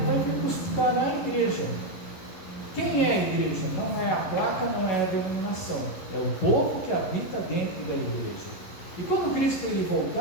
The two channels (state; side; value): late; right; 11 ms